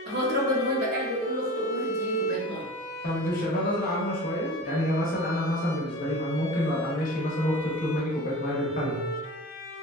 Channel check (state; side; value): normal; both; correlation 0.35